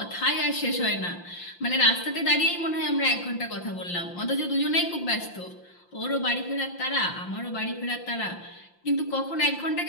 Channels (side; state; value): right; late; 5.8 ms